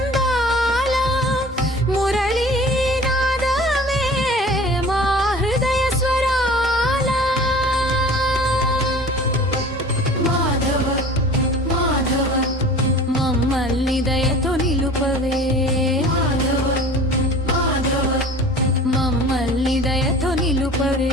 మురళీనాదమే మా హృదయ స్వరాల మాధవ మాధవ మమ్మల్ని దయతో నిలుపవే మాధవ మాధవ మమ్మల్ని దయతో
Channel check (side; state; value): both; normal; correlation 0.43